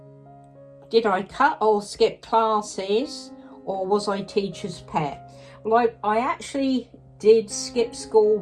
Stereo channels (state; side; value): identical; both; correlation 1.00